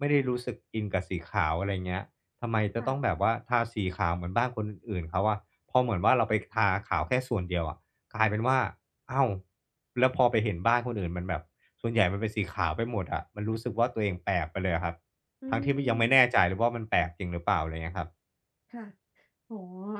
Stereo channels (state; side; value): identical; both; correlation 1.00